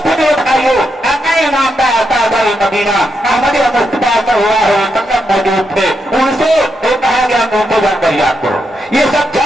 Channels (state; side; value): normal; both; correlation 0.82